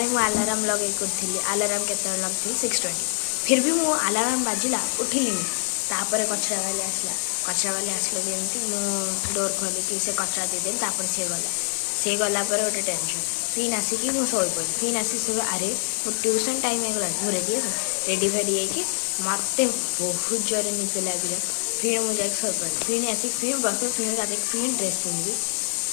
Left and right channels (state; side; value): silent; right; 62 dB below the other